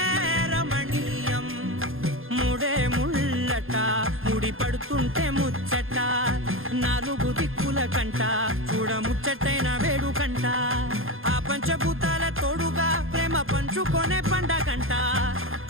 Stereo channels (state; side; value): late; left; 0.60 ms